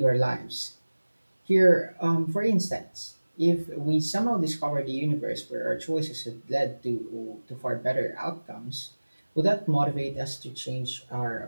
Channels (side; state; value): both; inverted; correlation -1.00